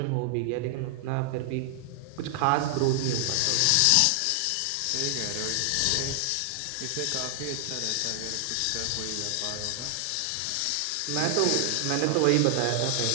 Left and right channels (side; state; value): both; different; correlation 0.00